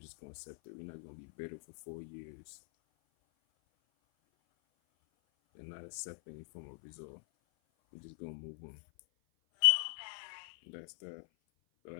gonna accept it. We're not gonna be bitter for 4 years and not accept any form of result. We're just gonna move on. That's that. But I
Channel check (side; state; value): right; silent; 51 dB below the other